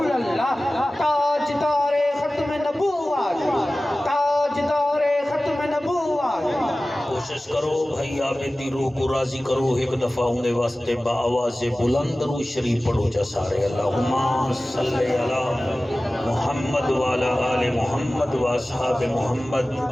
اللہ تاجدار ختم نبوت تاجدار ختم نبوت کوشش کرو بھائی آبیدی روح کو راضی کرو ایک دفعہ ہونے واسطے با آواز بلند رو شریف پڑھو جا سارے اللہم صلی علی محمد وعلا آل محمد و اصحاب محمد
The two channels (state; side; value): normal; both; correlation 0.97